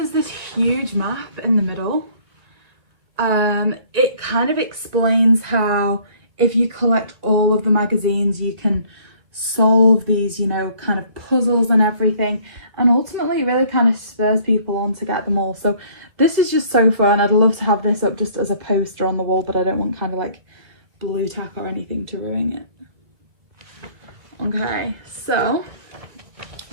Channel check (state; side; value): late; left; 2.0 ms